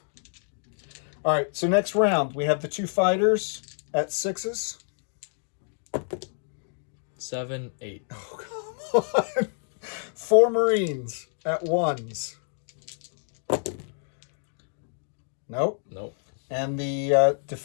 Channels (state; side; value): silent; right; digital silence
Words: All right. So next round, we have the 2 fighters at 6s. 7, 8. Oh, come on. 4 Marines at 1s. Nope. Nope. And the